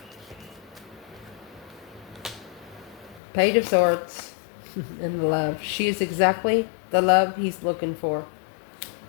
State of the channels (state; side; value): drops out; right; at 3.2 s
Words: Page of Swords and love. She is exactly the love he's looking for.